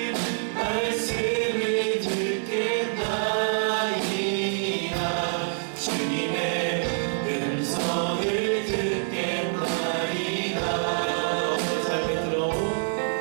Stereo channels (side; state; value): left; silent; digital silence